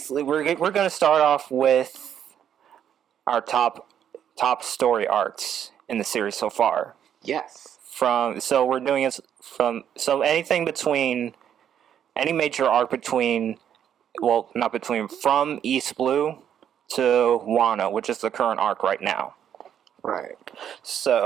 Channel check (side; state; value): left; quieter; 9.3 dB